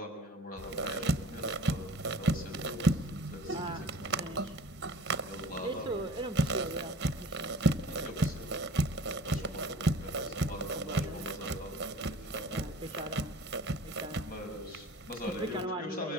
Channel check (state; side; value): normal; both; correlation 0.45